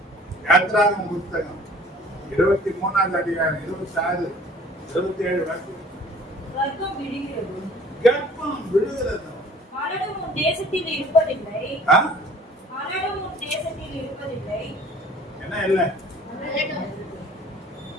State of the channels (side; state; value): both; normal; correlation 0.51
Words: யாத்ராகம புத்தகம் 23ஆம் அதிகாரம் 26, 27 வாக்கியம். கர்ப்பம் விடுகிறது. கர்ப்பம் விடுகிறது. மரணம் உன் தேசத்தில் இருப்பதில்லை. ஆ? மரணம் உன் தேசத்தில் இருப்பதில்லை. என்ன இல்ல?